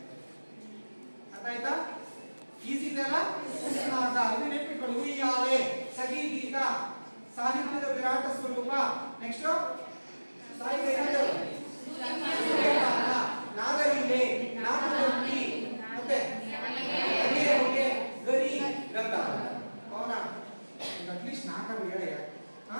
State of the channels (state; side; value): inverted; both; correlation -1.00